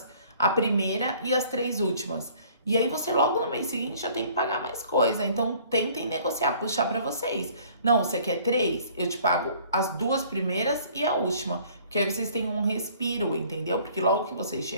a primeira e as 3 últimas. E aí você logo no mês seguinte já tem que pagar mais coisa. Então tentem negociar, puxar para vocês. Não, você quer 3? Eu te pago as 2 primeiras e a última. Porque aí vocês têm um respiro, entendeu? Porque logo que vocês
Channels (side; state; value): both; inverted; correlation -0.55